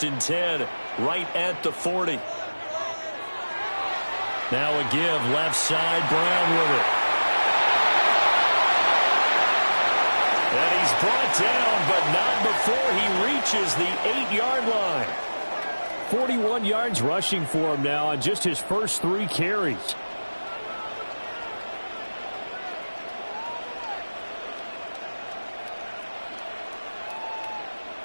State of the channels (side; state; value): both; inverted; correlation -1.00